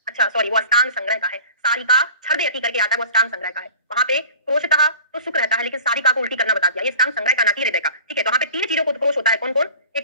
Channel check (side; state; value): both; inverted; correlation -0.41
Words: अच्छा सॉरी, वो अष्टांग संग्रह का है। सारिका छर्दयति करके आता है, वो अष्टांग संग्रह का है। वहां पे क्रोशतः तो सुख रहता है, लेकिन सारिका को उल्टी करना बता दिया, ये अष्टांग संग्रह का ना कि हृदय का। ठीक है, तो वहां पे तीन चीजों को उत्क्रोश होता है, कौन कौन?